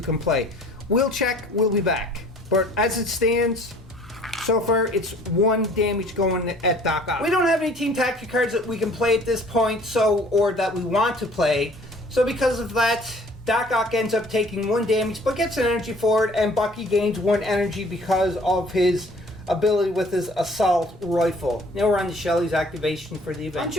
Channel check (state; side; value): normal; both; correlation 0.54